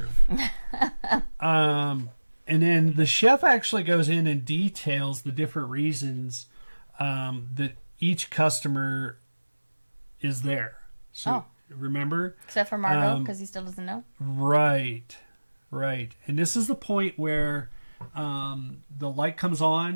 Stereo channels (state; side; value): inverted; both; correlation -1.00